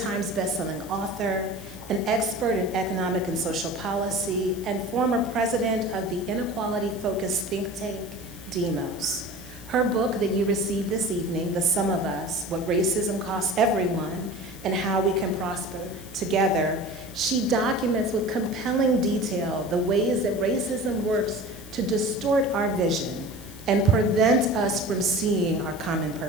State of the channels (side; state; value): left; noise; hiss, 18 dB below the sound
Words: bestselling author, an expert in economic and social policy, and former president of the inequality-focused think tank, Demos. Her book that you received this evening, The Sum of Us, What Racism Costs Everyone and How We Can Prosper Together, she documents with compelling detail the ways that racism works to distort our vision and prevent us from seeing our common